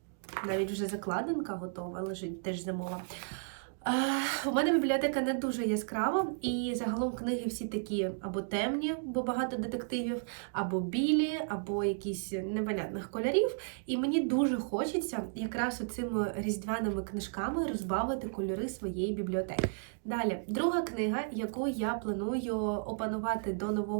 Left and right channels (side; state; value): left; silent; digital silence